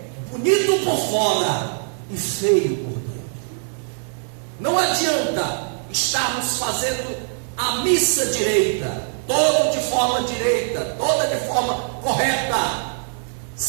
bonito por fora e feio por dentro. Não adianta estarmos fazendo a missa direita, toda de forma direita, toda de forma correta,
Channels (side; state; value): left; silent; digital silence